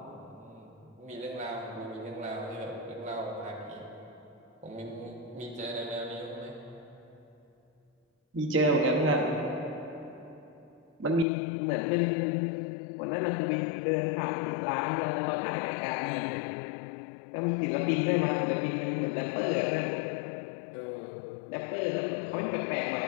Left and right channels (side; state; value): right; drops out; at 11.2 s